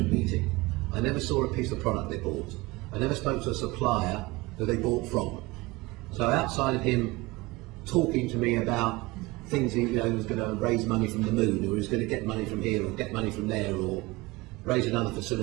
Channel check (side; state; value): left; quieter; 21.9 dB